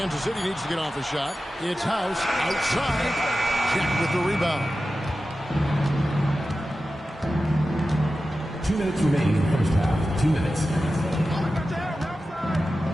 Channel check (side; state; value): both; normal; correlation 0.93